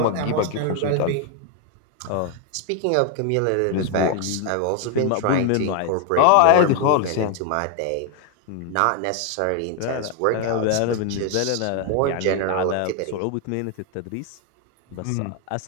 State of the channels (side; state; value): both; different; correlation 0.01